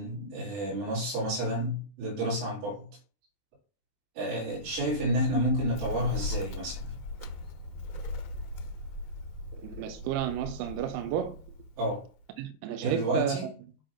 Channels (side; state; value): left; late; 20 ms